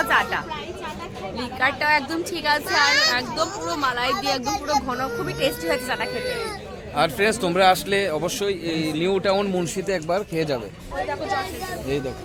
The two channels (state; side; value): identical; both; correlation 1.00